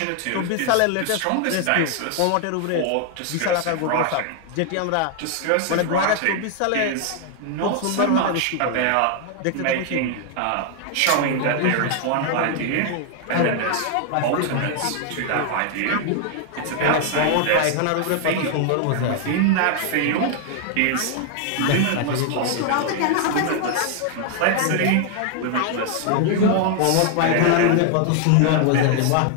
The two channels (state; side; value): different; both; correlation 0.00